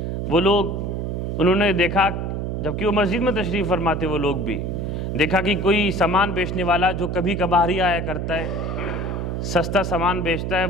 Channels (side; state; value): right; noise; hum, 3 dB below the sound